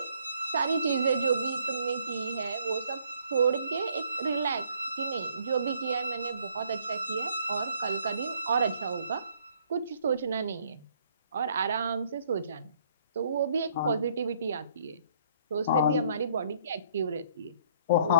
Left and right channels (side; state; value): both; inverted; correlation -0.64